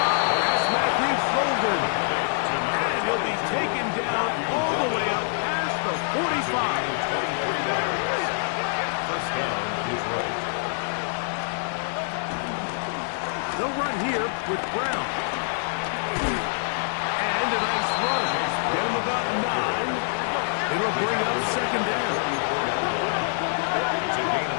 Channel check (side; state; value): right; silent; digital silence